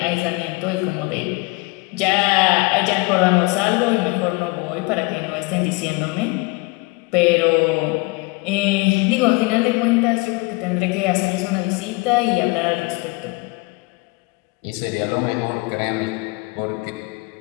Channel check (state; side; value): quieter; right; 26.2 dB